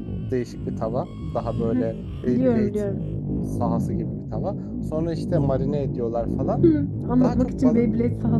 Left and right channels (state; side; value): identical; both; correlation 1.00